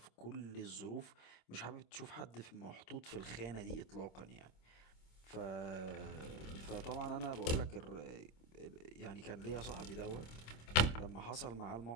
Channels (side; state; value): right; late; 26 ms